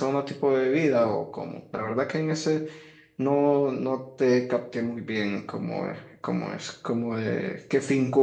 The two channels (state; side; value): identical; both; correlation 1.00